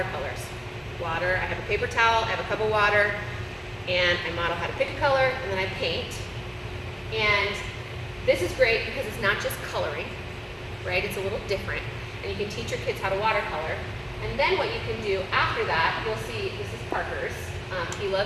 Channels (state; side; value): identical; both; correlation 1.00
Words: Water. I have a paper towel. I have a cup of water. And I model how to pick a color, and then I paint. And this is great because it's not just coloring, right? It's a little different. And you can teach your kids how to watercolor. And then what you can do after that, you'll see, this is Parker's. He